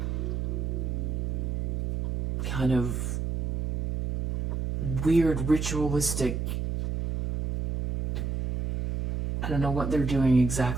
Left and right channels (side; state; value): right; noise; hum, 1 dB below the sound